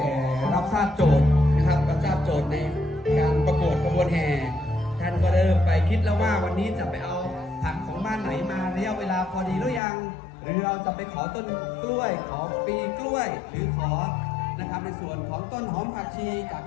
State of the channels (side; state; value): right; drops out; at 9.8 s